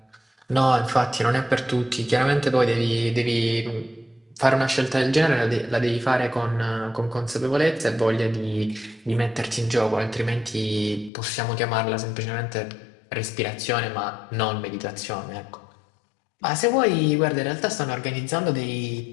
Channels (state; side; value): drops out; right; at 11.1 s